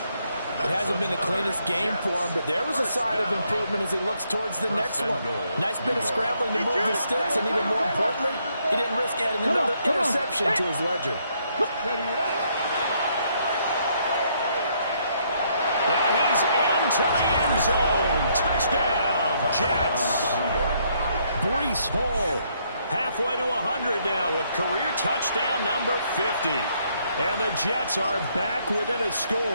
It hasn't been the cleanest game for him, but there was a sign of improvement as he looks towards the next one. Nice bit of scrambling to move the sticks, and even more importantly, he didn't risk adding another interception to his ledger. Now he's into the end zone. Touchdown, Jets. Breece Hall halfway to 100 now with career touchdown number 50. And the Jets are back within a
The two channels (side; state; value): both; inverted; correlation -0.71